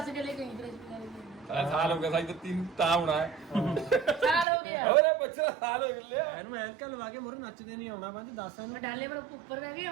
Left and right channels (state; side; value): drops out; left; at 4.5 s